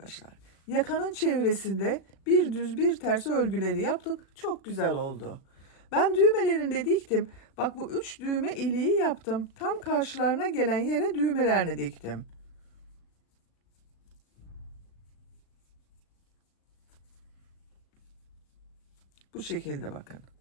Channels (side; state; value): right; late; 37 ms